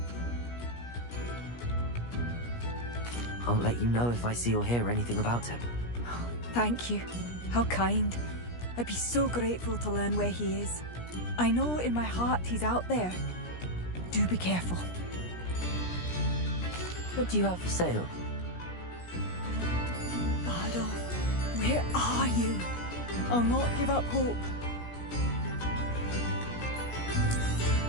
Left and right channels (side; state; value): right; late; 17 ms